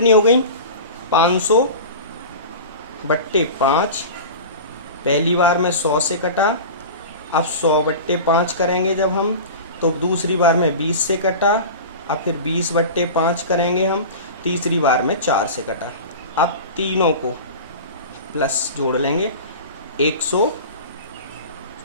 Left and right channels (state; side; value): inverted; both; correlation -0.33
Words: हो गई? 500 बट्टे 5, पहली बार में 100 से कटा, अब 100 बट्टे 5 करेंगे जब हम, तो दूसरी बार में 20 से कटा, अब फिर 20 बट्टे 5 करेंगे हम, तीसरी बार में 4 से कटा। अब तीनों को प्लस जोड़ लेंगे,